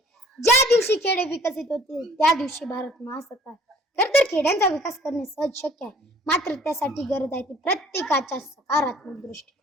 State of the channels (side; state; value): both; normal; correlation 0.53